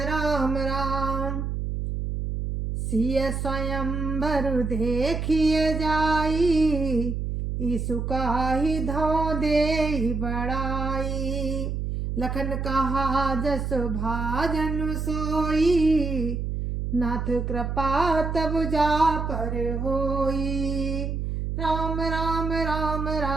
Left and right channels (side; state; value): right; noise; hum, 2 dB below the sound